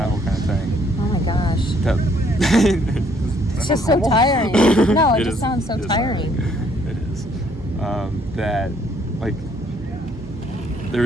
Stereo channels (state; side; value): normal; both; correlation 0.66